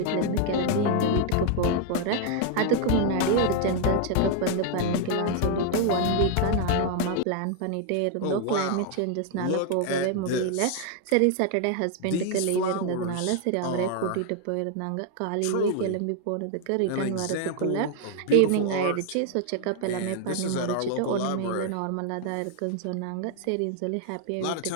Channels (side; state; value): both; different; correlation 0.00